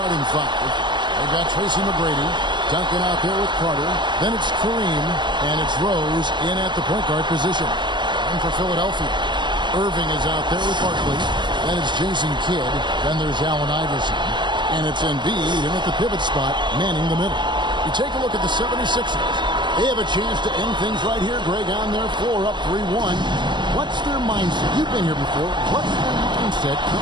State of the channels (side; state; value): left; late; 0.22 ms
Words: five. They've got Tracy McGrady, Duncan out there with Carter. Then it's Kareem, and it's Rose in at the point guard position. And for Philadelphia, Irving is out there with Barkley. Then it's Jason Kidd. Then there's Allen Iverson. And it's Embiid in at the pivot spot, manning the middle. You take a look at the 76ers. They have a chance to end things right here, Greg, on their floor, up 3-1. What's their mindset? You've been here before. What's their mindset